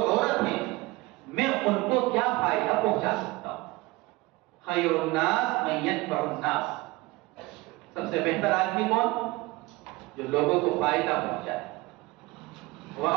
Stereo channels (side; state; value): left; quieter; 21.7 dB